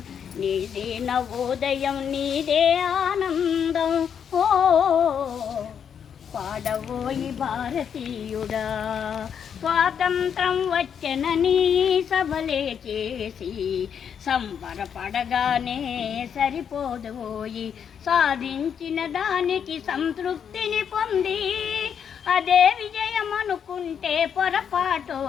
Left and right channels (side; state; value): right; quieter; 7.8 dB